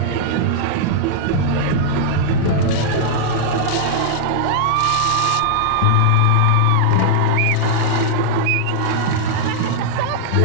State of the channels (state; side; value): different; both; correlation -0.01